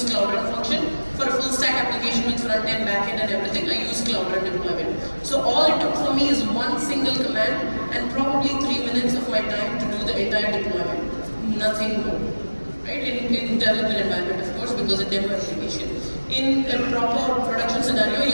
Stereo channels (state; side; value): inverted; both; correlation -1.00